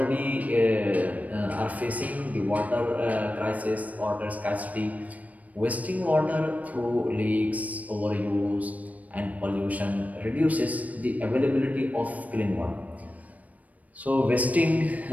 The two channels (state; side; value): late; left; 0.072 ms